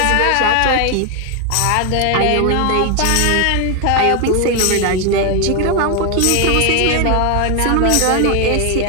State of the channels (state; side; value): different; both; correlation 0.01